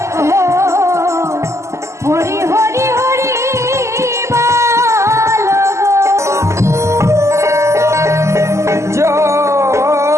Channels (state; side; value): late; left; 0.13 ms